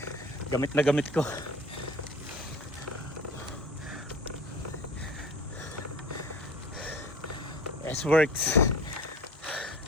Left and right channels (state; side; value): normal; both; correlation 0.41